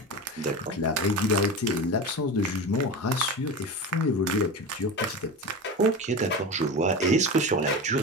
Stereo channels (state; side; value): normal; both; correlation 0.27